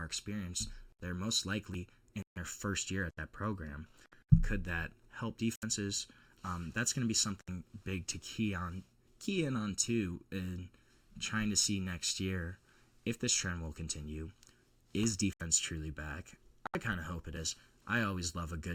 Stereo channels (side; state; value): both; identical; correlation 1.00